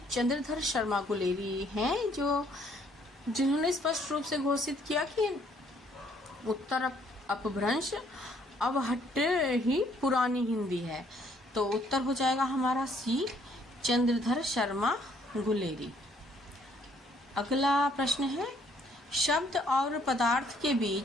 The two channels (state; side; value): normal; both; correlation 0.65